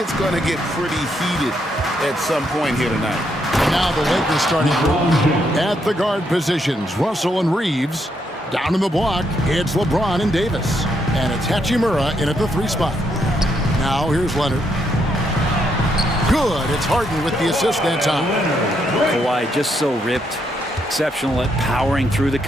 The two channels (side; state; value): both; normal; correlation 0.77